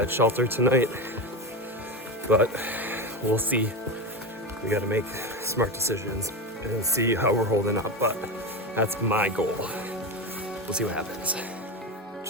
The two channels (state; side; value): normal; both; correlation 0.19